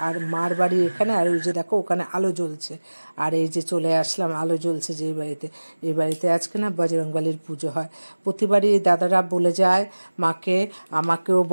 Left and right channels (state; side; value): inverted; both; correlation -1.00